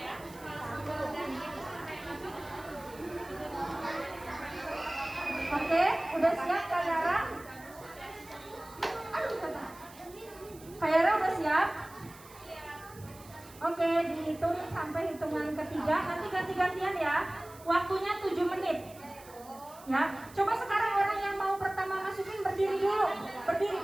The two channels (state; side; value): noise; right; hiss, 21 dB below the sound